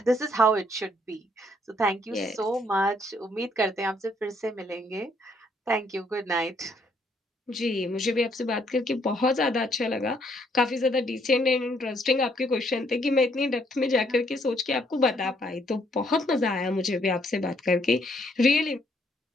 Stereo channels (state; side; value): normal; both; correlation 0.69